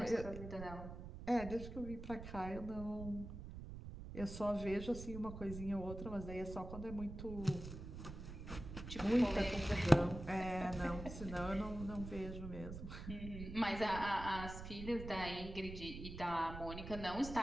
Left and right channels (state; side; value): noise; right; rumble, 9 dB below the sound